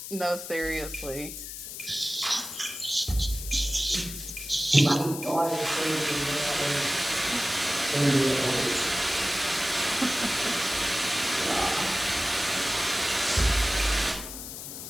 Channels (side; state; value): left; noise; hiss, 9 dB below the sound